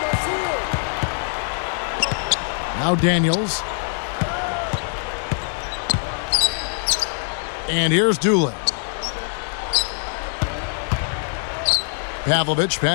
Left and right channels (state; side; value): silent; right; digital silence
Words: Now Daniels. And here's Doolin. Pavlovich